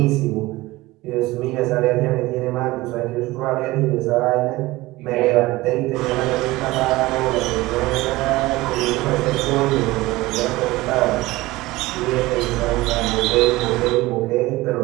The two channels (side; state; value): left; quieter; 19.5 dB